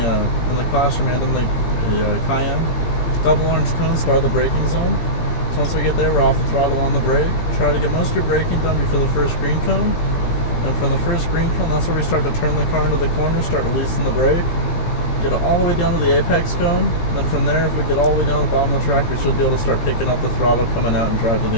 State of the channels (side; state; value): right; late; 17 ms